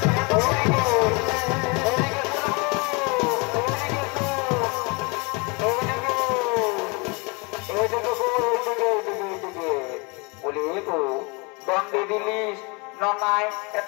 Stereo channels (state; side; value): quieter; right; 29.7 dB